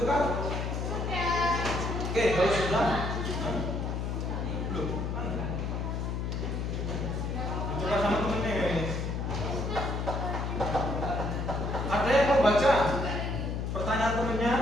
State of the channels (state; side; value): noise; left; hum, 2 dB below the sound